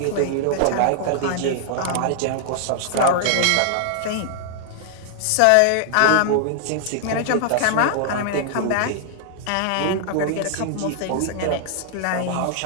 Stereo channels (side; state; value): both; different; correlation -0.01